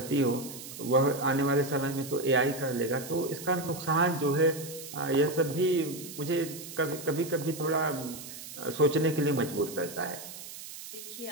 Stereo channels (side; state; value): right; noise; hiss, 12 dB below the sound